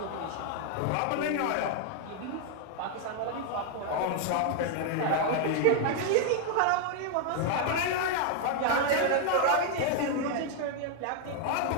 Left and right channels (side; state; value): both; different; correlation 0.00